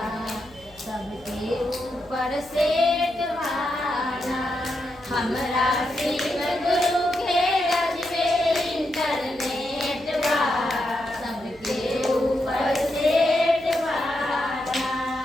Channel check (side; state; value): left; noise; hum, 26 dB below the sound